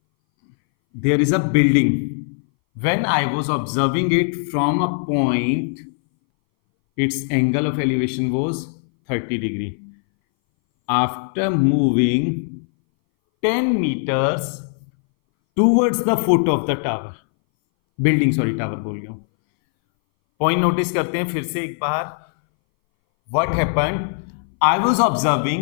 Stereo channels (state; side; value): silent; right; 61 dB below the other